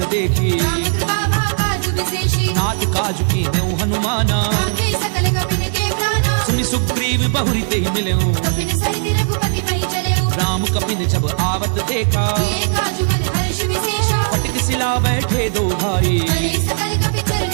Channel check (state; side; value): silent; left; digital silence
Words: देखी राम कृपा भाकाजु विशेषी नाथ काजु की नेउ हनुमाना आखे सकल कपिन के प्राणा सुनि सुग्रीव बहुरी ते मिलेऊ कपिन सहित रघुपति पहि चलेऊ राम कपिन जब आवत देखा ये काजु मन हर्ष विशेषा फटक सिला बैठे दो भाई करे सकल कपि